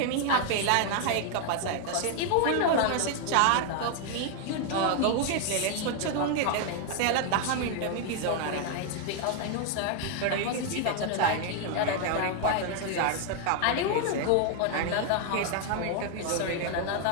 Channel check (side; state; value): both; different; correlation 0.00